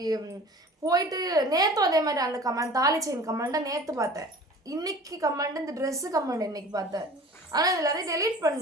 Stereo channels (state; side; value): normal; both; correlation 0.43